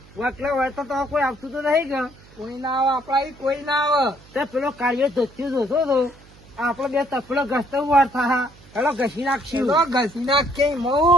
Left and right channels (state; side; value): noise; right; hum, 24 dB below the sound